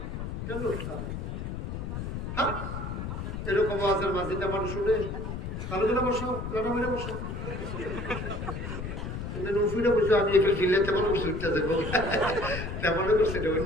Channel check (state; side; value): noise; left; rumble, 5 dB below the sound